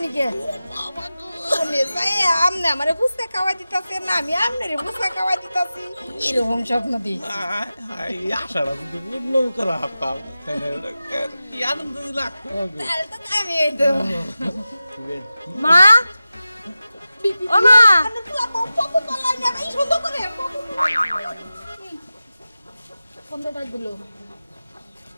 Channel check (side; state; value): both; inverted; correlation -0.94